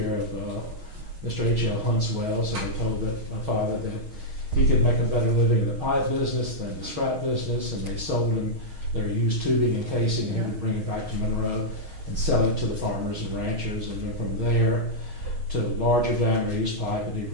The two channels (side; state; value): left; late; 6.4 ms